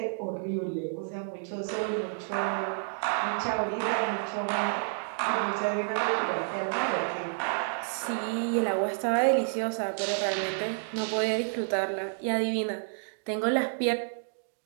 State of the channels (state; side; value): silent; left; digital silence